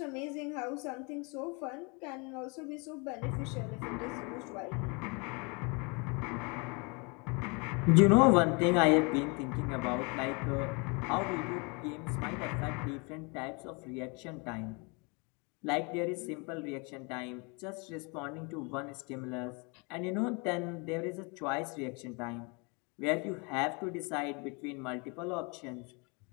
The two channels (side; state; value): right; quieter; 31.4 dB